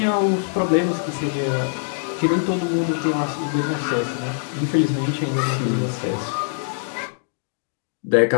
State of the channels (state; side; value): silent; right; digital silence